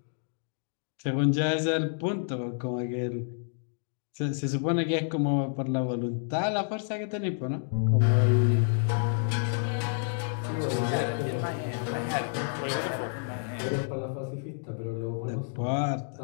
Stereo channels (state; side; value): silent; right; digital silence